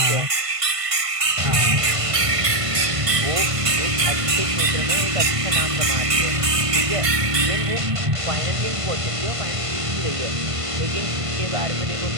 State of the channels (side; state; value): left; late; 1.5 ms